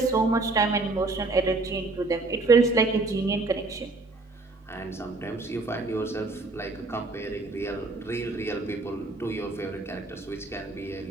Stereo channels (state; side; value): quieter; left; 3.3 dB